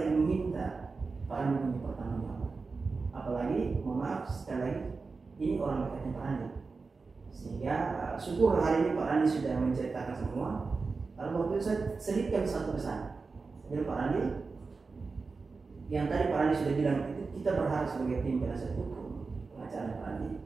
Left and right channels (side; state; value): left; quieter; 4.3 dB